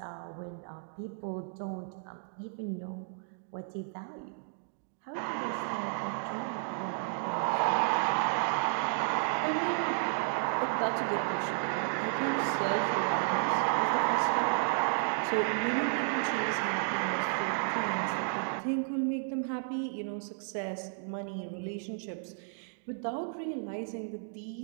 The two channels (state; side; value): silent; left; digital silence